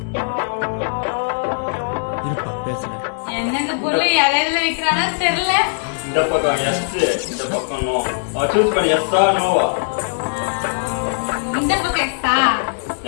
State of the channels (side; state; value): right; silent; 66 dB below the other